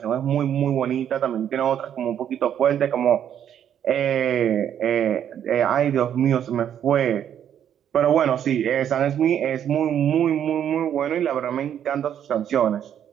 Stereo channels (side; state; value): left; quieter; 9.6 dB